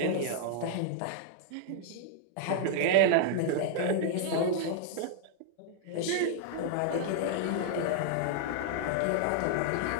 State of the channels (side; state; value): both; different; correlation -0.01